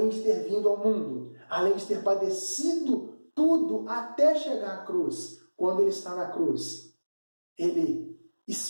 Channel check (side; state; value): both; inverted; correlation -1.00